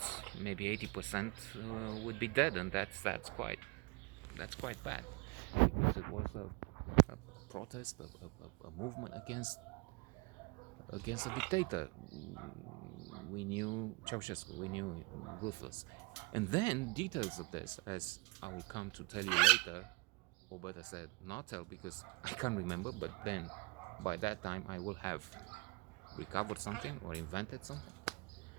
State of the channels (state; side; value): quieter; left; 27.2 dB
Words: Maybe 80% would be dead, and that's quite bad, because it was a protest, a movement against a dictator. We knew Ceausescu, we knew ruthless, and then details of this, as I will come to tell you later, or better said, not tell, because I can't remember. But then, by that time, I will have recovered something or invented something.